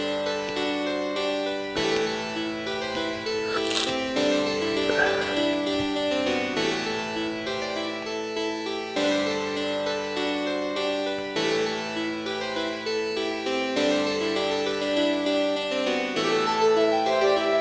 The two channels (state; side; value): identical; both; correlation 1.00